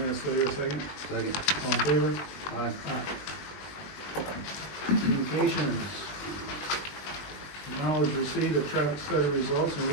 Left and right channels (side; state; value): right; late; 21 ms